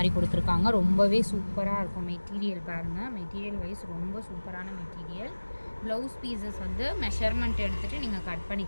கொடுத்துருக்காங்க. ரொம்பவே சூப்பராக இருக்கும். மெட்டீரியல் பாருங்கள், மெட்டீரியல் வைஸ் ரொம்ப சூப்பரான மெட்டீரியல். ப்ளவுஸ் பீசஸ் வந்து மெஷர்மெண்ட் எடுத்துகிட்டு நீங்கள் கட்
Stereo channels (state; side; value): inverted; both; correlation -1.00